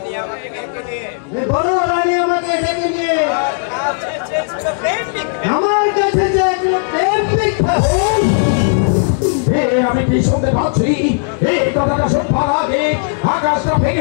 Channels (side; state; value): right; silent; 68 dB below the other